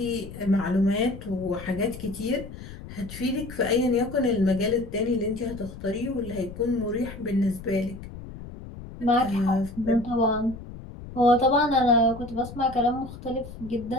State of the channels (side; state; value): left; noise; rumble, 13 dB below the sound